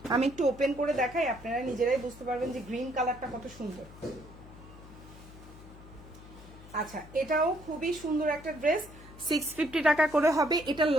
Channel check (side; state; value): left; noise; hum, 18 dB below the sound